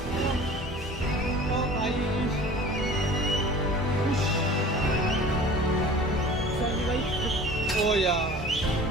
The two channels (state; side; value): normal; both; correlation 0.43